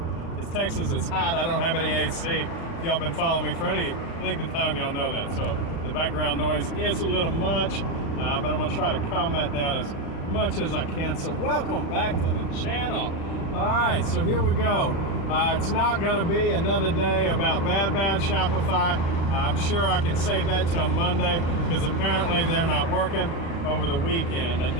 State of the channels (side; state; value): right; late; 36 ms